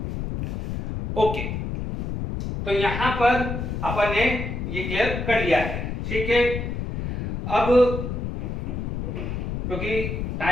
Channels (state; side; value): noise; left; rumble, 4 dB below the sound